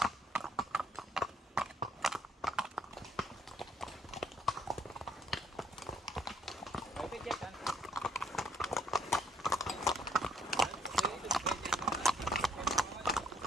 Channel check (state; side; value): normal; both; correlation 0.66